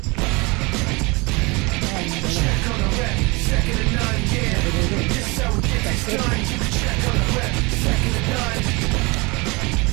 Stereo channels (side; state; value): left; quieter; 26.4 dB